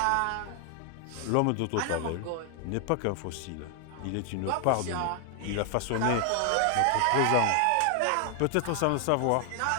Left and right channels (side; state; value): both; different; correlation 0.00